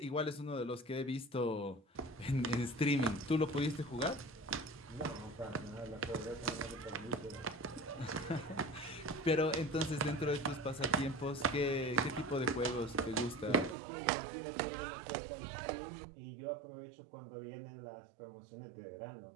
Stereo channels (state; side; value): drops out; left; at 13.8 s